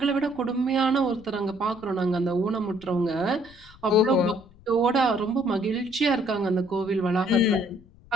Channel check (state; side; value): noise; left; rumble, 25 dB below the sound